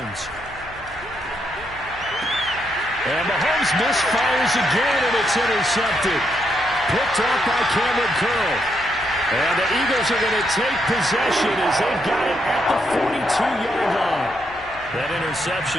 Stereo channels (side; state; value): left; noise; hum, 22 dB below the sound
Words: And Mahomes misfires again, and it's intercepted. Picked off by Cameron Curl. And the Eagles are going to take possession as they've got it at the 42-yard line. That